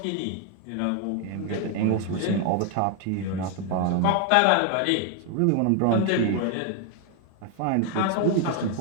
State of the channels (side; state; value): both; different; correlation 0.00